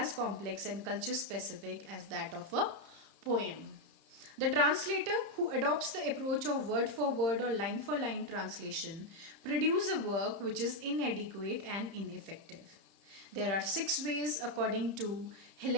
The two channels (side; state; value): left; late; 30 ms